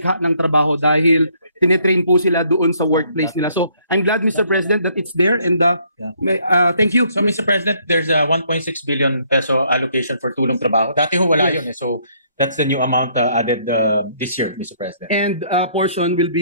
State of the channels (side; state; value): both; inverted; correlation -0.66